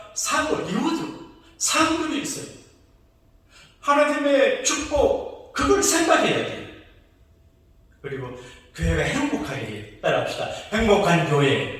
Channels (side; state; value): both; identical; correlation 1.00